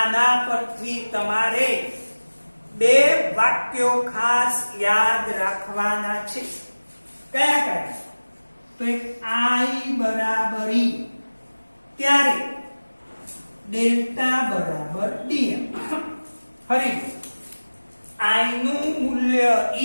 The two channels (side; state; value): both; inverted; correlation -1.00